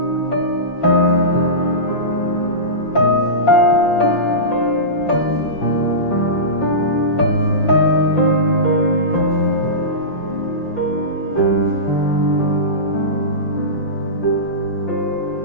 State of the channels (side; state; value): right; late; 5.7 ms